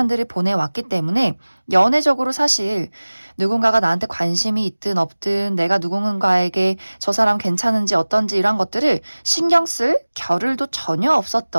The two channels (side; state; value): both; inverted; correlation -1.00